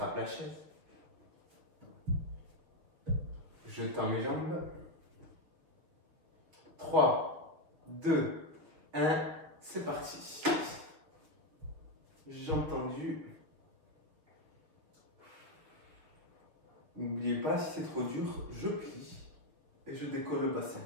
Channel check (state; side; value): late; left; 6.7 ms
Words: la chaise. Je tends mes jambes. 3, 2, 1, c'est parti. Jambes tendues. N'oubliez pas, si c'est trop dur, je plie et je décolle le bassin.